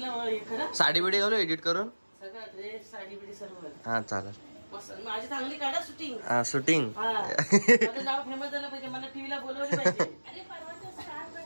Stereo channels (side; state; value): both; inverted; correlation -1.00